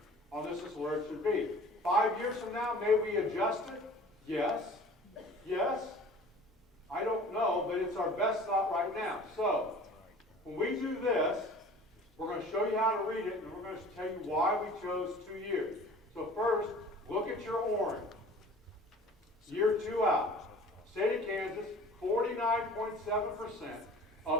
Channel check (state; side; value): normal; both; correlation 0.45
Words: on this is where it should be. 5 years from now, may we adjust it? Yes. Yes. I don't know, but it's our best thought right now. So, when we do this, we're going to show you how to read it, and we're going to tell you why we chose 2 years. So first, look at your orange. Year 2 out. State of Kansas, 49.7%